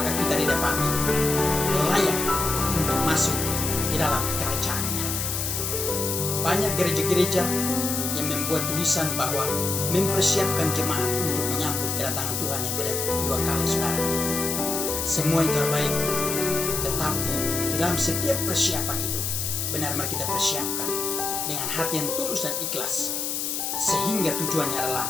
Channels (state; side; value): noise; left; hiss, 1 dB below the sound